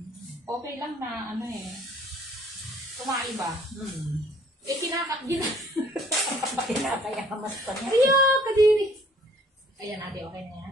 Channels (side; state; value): both; normal; correlation 0.58